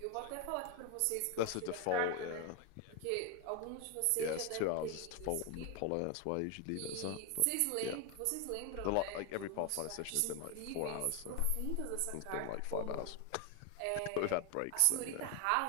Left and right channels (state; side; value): different; both; correlation 0.01